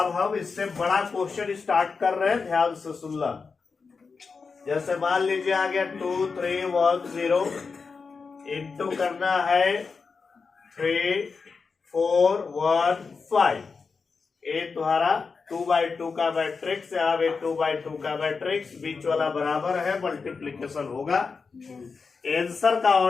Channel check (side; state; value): right; quieter; 4.9 dB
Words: हम इससे बड़ा क्वेश्चन स्टार्ट कर रहे हैं, ध्यान से सुनना। जैसे मान लीजिए आ गया 2 3 1 0, इंटू करना है 3 4 1 5। ये तुम्हारा 2/2 का मैट्रिक्स, यहाँ पे 2/2 का मैट्रिक्स, बीच वाला बराबर है, मल्टीप्लीकेशन होगा। आंसर का